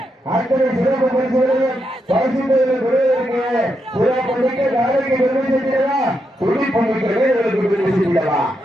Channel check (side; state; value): both; normal; correlation 0.83